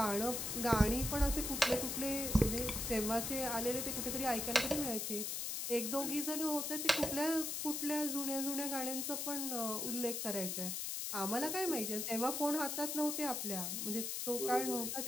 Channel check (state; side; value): noise; left; hiss, 2 dB below the sound